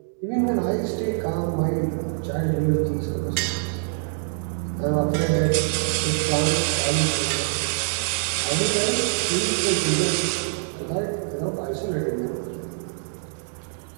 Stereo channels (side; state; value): left; silent; digital silence